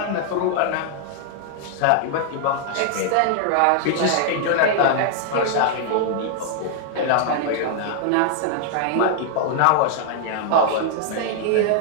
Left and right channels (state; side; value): different; both; correlation -0.01